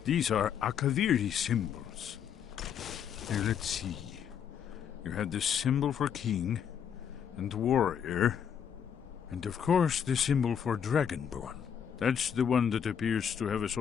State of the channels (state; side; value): quieter; right; 8.2 dB